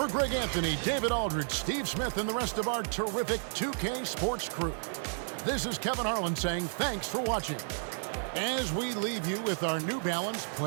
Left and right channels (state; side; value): silent; left; digital silence